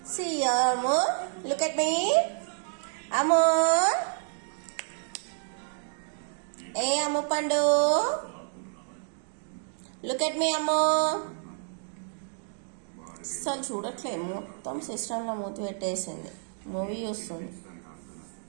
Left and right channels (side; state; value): left; silent; digital silence